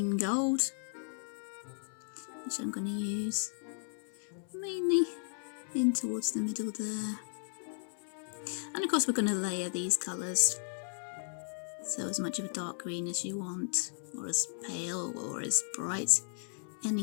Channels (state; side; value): silent; right; 54 dB below the other